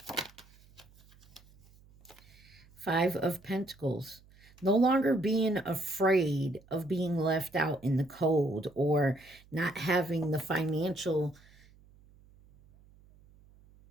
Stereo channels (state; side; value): noise; right; hum, 27 dB below the sound